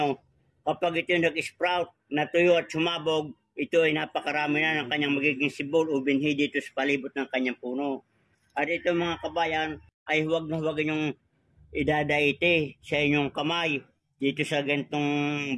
kapag ito nag-sprout, natuyo at sumabog, ito ay napakarami na ng kanyang magiging sibol o binhi dito sa palibot ng kanyang puno. At ito mga kabayan, ay huwag na huwag yung idadaite sa inyong kamay dito sa gantong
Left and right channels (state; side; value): identical; both; correlation 1.00